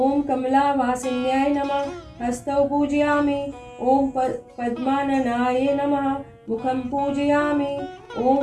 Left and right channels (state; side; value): identical; both; correlation 1.00